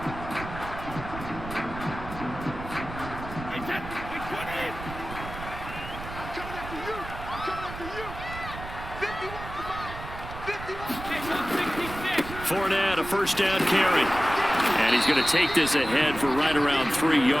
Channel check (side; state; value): right; noise; rumble, 11 dB below the sound